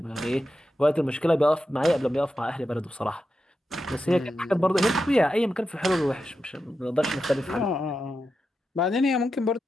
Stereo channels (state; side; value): normal; both; correlation 0.89